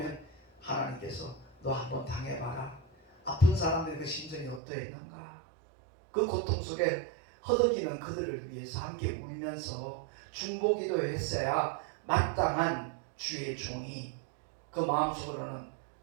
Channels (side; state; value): left; drops out; at 4.6 s